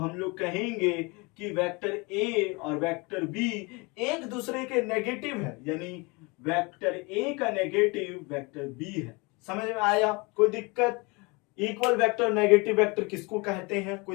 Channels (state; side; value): quieter; right; 27.5 dB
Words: लोग कहेंगे कि वेक्टर ए और वेक्टर बी एक दूसरे के नेगेटिव है, यानी वेक्टर ए का नेगेटिव वेक्टर बी है। समझ में आया, कोई दिक्कत? इक्वल वेक्टर नेगेटिव वेक्टर किसको कहते हैं,